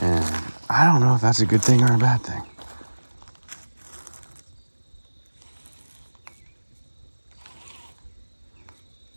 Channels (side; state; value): both; inverted; correlation -1.00